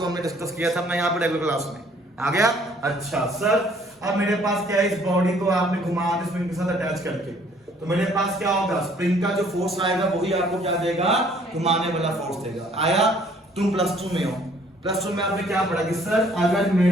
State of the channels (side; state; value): both; normal; correlation 0.60